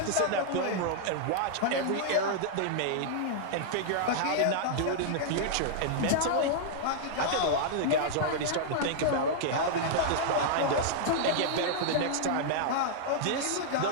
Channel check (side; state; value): both; different; correlation -0.01